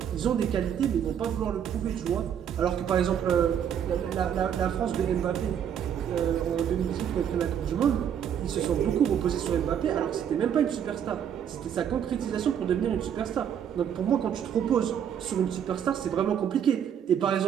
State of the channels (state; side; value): quieter; left; 8.8 dB